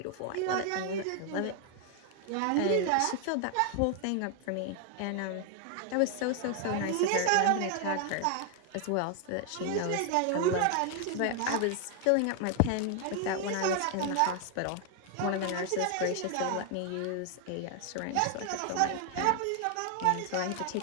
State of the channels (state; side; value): different; both; correlation 0.00